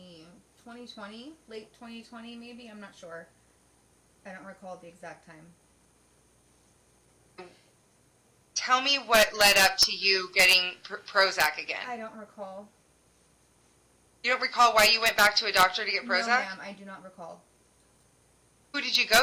late 2020 maybe, I'm not sure. I don't recall the exact time. Tell me what led up to you getting Prozac again. I don't recall. You don't recall why you went back to a doctor to get Prozac? No, ma'am, I do not recall. Who did you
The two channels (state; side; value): identical; both; correlation 1.00